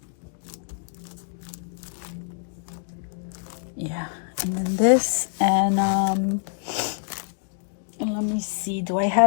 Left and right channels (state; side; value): silent; right; digital silence